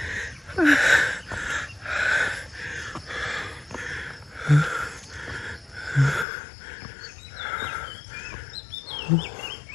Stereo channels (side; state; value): right; drops out; at 6.2 s